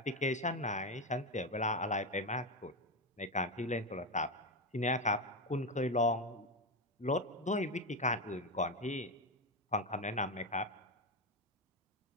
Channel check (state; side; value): normal; both; correlation 0.12